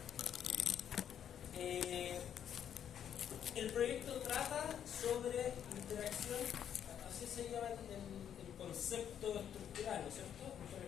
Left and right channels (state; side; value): quieter; right; 9.2 dB